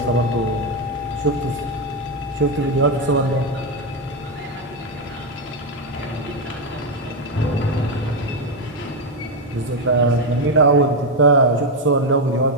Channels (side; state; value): both; normal; correlation 0.06